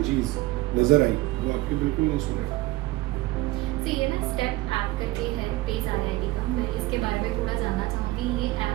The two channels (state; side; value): quieter; left; 18.7 dB